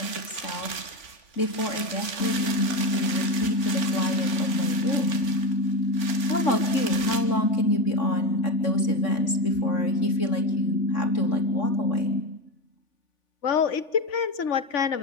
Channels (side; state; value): right; late; 3.5 ms